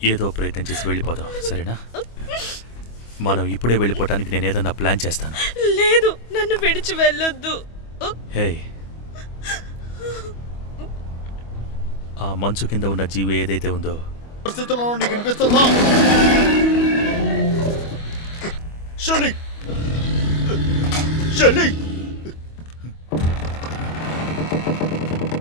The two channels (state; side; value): late; right; 25 ms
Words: ఏదో ప్రయత్నం చేసి వెళ్ళిపోదాం, సరేనా? మనం ఇప్పుడే వెళ్ళిపోవటానికి నేను ఏదన్నా ప్లాన్ చేస్తాను. లేదు, నన్ను విడిచి వెళ్ళొద్దు. హే, ఆ మంచు కింద ఉన్న జీవి ఏదైతే ఉందో పరిస్థితుల్లో నీకు వినిపిస్తుందా? షెల్లీ! షెల్లీ!